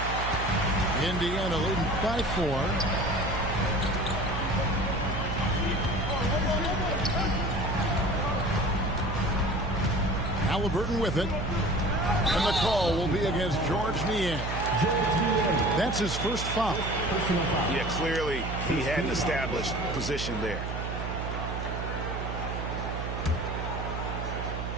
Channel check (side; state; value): right; noise; hum, 4 dB below the sound